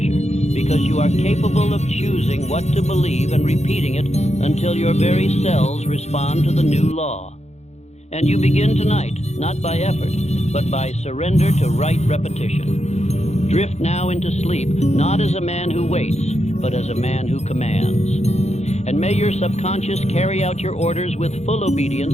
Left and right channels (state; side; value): late; right; 0.32 ms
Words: because you are capable of choosing what to believe and repeating it until your very cells respond to the new law. And you begin tonight, not by effort, but by surrender to right repetition. Drift now into sleep, not as a man who waits, but as a man who commands. And may your subconscious carry out your orders with full obedience,